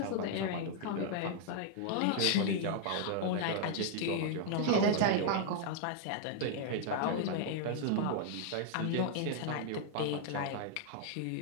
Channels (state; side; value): different; both; correlation -0.01